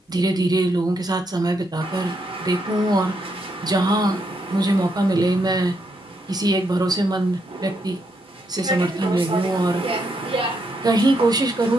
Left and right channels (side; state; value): both; normal; correlation 0.78